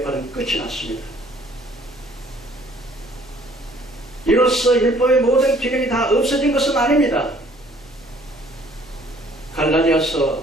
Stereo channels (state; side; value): noise; right; hum, 28 dB below the sound